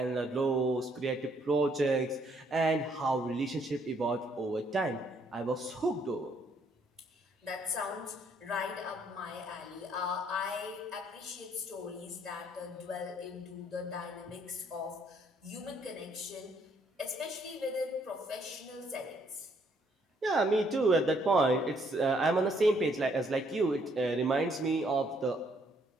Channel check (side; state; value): both; normal; correlation 0.68